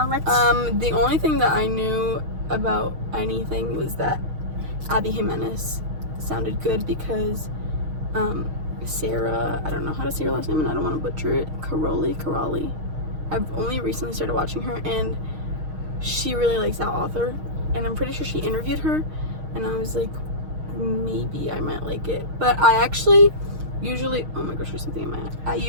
the only thing that I knew about anything was that Abby Jimenez sounded good because Sarah, I don't know how to say her last name and I don't want to butcher it, Caroli. I've only recently started watching her and she really likes that author and I'm pretty sure she interviewed her and I was like, maybe I might like it. But I actually usually, oh my gosh, there's something in my eye. I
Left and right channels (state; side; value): late; left; 6.4 ms